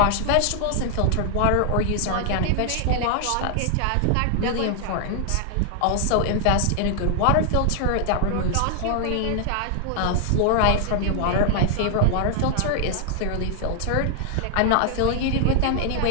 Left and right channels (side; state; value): both; different; correlation 0.00